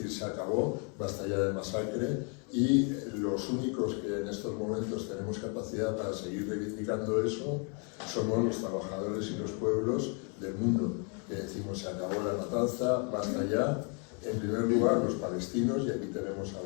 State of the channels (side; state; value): right; quieter; 36.9 dB